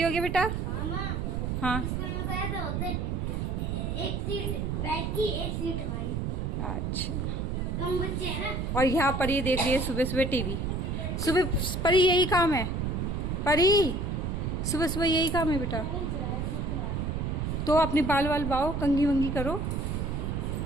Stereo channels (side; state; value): right; noise; rumble, 1 dB below the sound